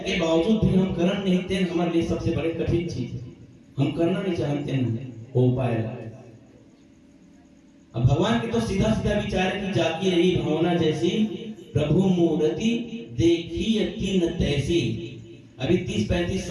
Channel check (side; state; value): both; identical; correlation 1.00